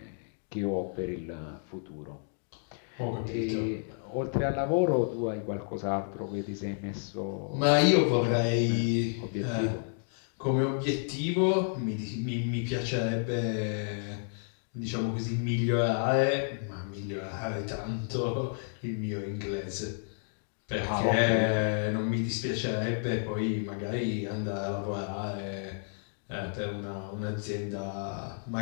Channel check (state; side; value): silent; right; digital silence